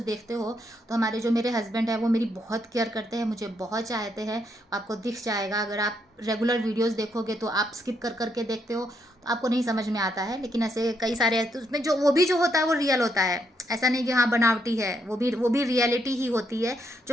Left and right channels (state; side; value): normal; both; correlation 0.76